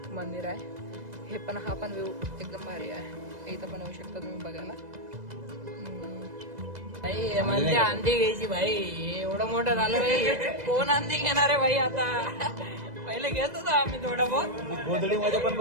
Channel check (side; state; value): left; late; 2.0 ms